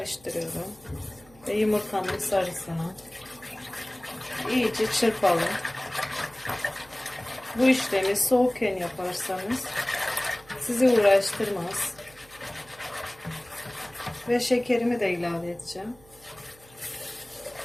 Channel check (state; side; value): noise; right; hum, 26 dB below the sound